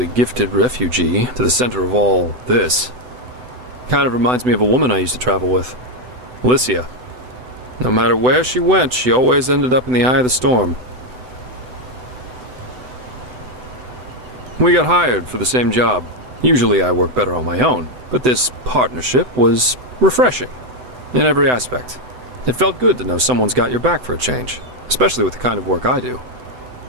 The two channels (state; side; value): late; left; 7.9 ms